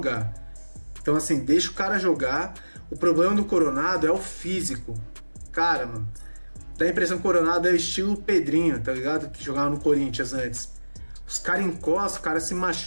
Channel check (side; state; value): both; inverted; correlation -1.00